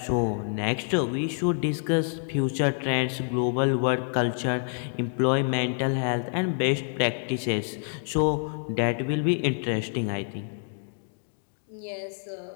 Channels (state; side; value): silent; right; 60 dB below the other